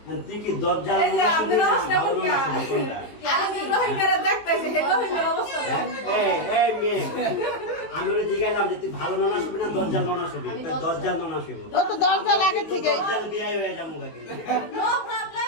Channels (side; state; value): right; late; 19 ms